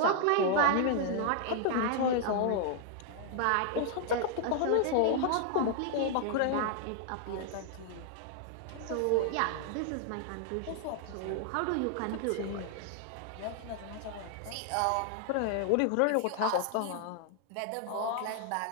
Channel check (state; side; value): different; both; correlation 0.00